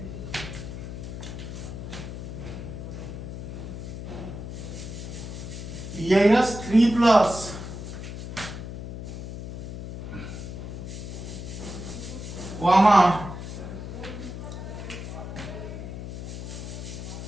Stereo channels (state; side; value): noise; left; hum, 8 dB below the sound